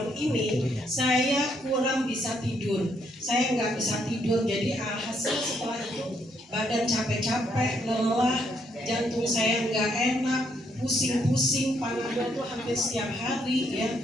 ini, saya kurang bisa tidur. Saya nggak bisa tidur, jadi alhasil setelah itu badan capek-capek, lelah, jantung saya nggak enak, pusing-pusing, panadol tuh hampir setiap hari ya.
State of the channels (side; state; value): both; normal; correlation 0.73